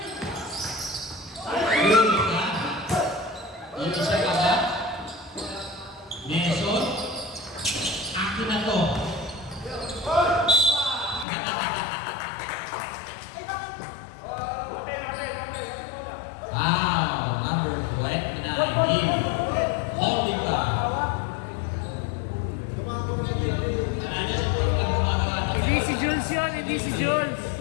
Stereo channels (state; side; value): drops out; right; at 11.2 s